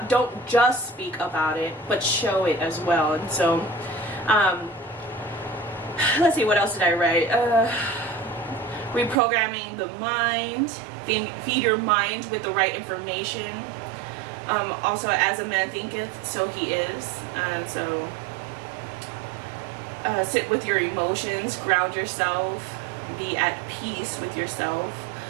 it, but show it as well. And so, let's see, what else did I write? Reprogramming the mind. Feed your mind with the right information. Also, as a man thinketh, so he is. And so, sit with your emotions, ground yourself, be at peace with yourself.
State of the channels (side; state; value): left; drops out; at 9.2 s